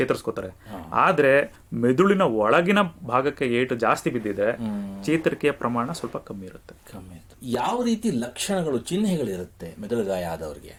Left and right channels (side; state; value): both; identical; correlation 1.00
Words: ಆದ್ರೆ ಮೆದುಳಿನ ಒಳಗಿನ ಭಾಗಕ್ಕೆ ಏಟು ಜಾಸ್ತಿ ಬಿದ್ದಿದ್ರೆ ಚೇತರಿಕೆಯ ಪ್ರಮಾಣ ಸ್ವಲ್ಪ ಕಮ್ಮಿ ಇರುತ್ತೆ. ಯಾವ ರೀತಿ ಲಕ್ಷಣಗಳು, ಚಿಹ್ನೆಗಳಿರುತ್ತೆ ಮೆದುಳು ಗಾಯ ಆದವರಿಗೆ?